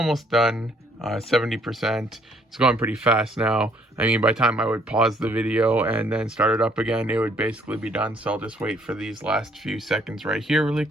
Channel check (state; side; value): normal; both; correlation 0.65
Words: done. 70%. It's going pretty fast now. I mean, by the time I would pause the video and then start it up again, it would basically be done. So I'll just wait for these last few seconds right here really